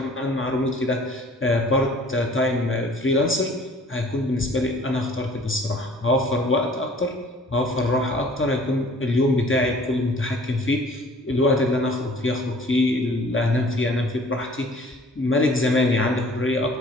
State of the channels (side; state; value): both; normal; correlation 0.51